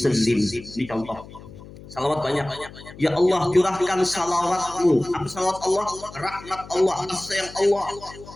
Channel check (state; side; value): noise; left; hum, 17 dB below the sound